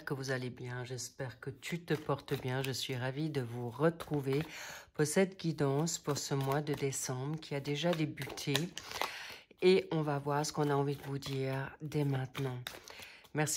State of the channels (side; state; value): both; identical; correlation 1.00